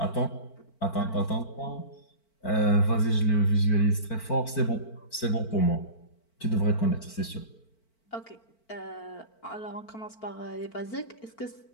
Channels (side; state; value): right; late; 4.5 ms